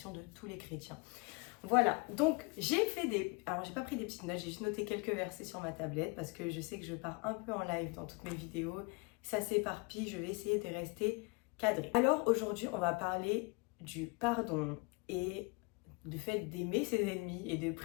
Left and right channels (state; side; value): quieter; right; 29.7 dB